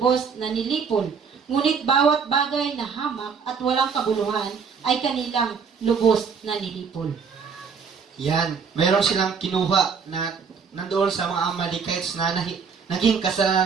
na nilipol, ngunit bawat bagay na hamak at walang kabuluhan ay kanilang lubos na nilipol. Yan, mayroon silang kinuha na nandoon sa mga Amalekites na naging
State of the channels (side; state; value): left; quieter; 6.0 dB